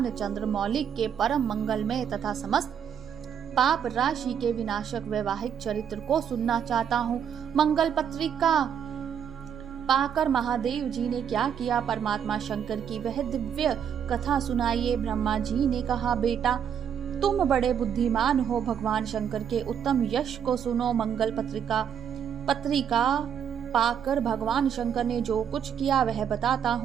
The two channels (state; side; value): quieter; left; 8.3 dB